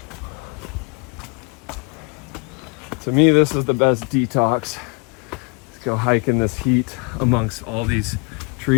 To me, this is the best detox. Let's go hike in this heat amongst all these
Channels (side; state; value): right; quieter; 33.7 dB